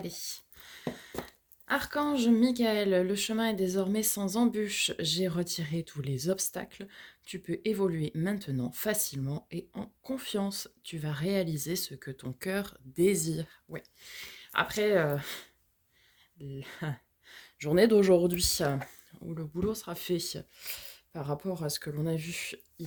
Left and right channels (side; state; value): both; identical; correlation 1.00